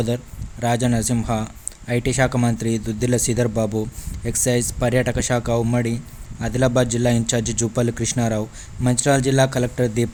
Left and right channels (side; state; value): both; identical; correlation 1.00